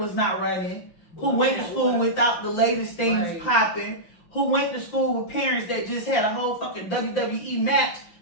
not running, who went to school without the latest things popping, who went to school with parents that just had a whole fucking WWE match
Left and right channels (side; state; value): right; late; 5.8 ms